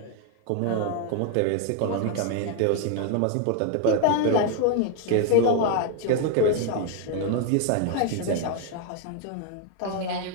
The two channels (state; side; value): different; both; correlation 0.00